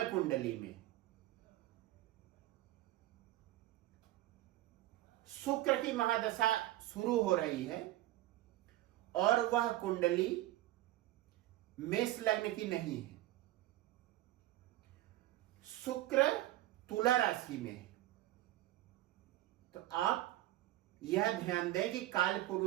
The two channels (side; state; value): left; quieter; 15.7 dB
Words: कुंडली में शुक्र की महादशा शुरू हो रही है और वह कुंडली मेष लग्न की नहीं है, शुक्र तुला राशि में है, तो आप यह ध्यान दें कि काल